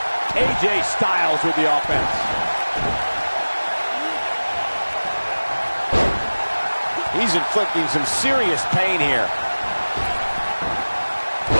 AJ Styles with the offense. He's inflicting some serious pain here.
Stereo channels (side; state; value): both; inverted; correlation -1.00